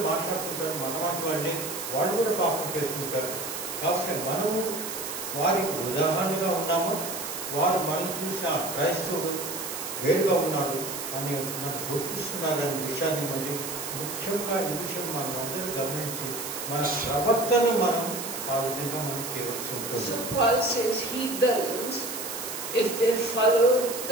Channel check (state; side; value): noise; right; hiss, 6 dB below the sound